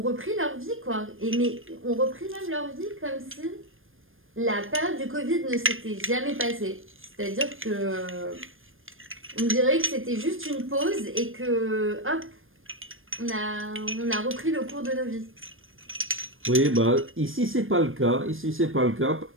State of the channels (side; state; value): left; late; 0.59 ms